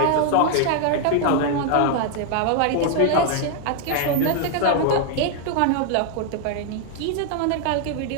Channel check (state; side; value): different; both; correlation 0.00